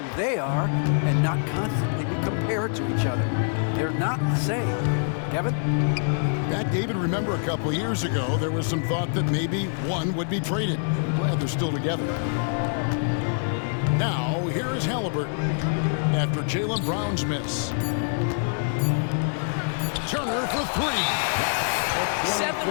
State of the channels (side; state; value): right; silent; digital silence